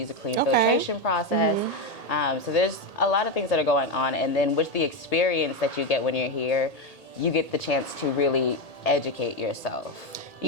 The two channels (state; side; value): late; right; 1.8 ms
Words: a clean filtration process. So there's a lot of things that are going on. And then with the experience that you get when you're here, you get the chance to really educate yourself.